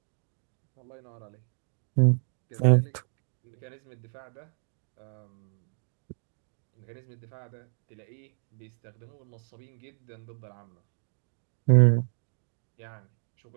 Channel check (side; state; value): left; silent; digital silence